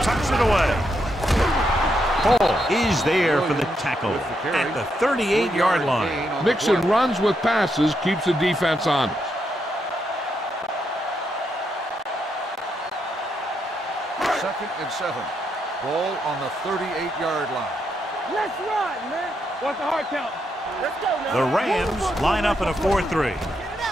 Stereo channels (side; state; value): both; normal; correlation 0.80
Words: tucks it away. Hall is there for the tackle at the 38-yard line. Mixing runs with passes keeps the defense honest. Second and 7. Ball on the 38-yard line. Let's run, man. What's the hard count? Let's go now. The Rams line up in a 4-3.